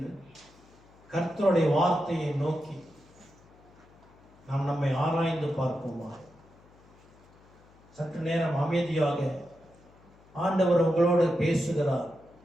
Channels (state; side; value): noise; left; hum, 27 dB below the sound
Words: கர்த்தருடைய வார்த்தையை நோக்கி நாம் நம்மை ஆராய்ந்து பார்ப்போமா? சற்று நேரம் அமைதியாக ஆண்டவர் உங்களோடு பேசுகிறார்.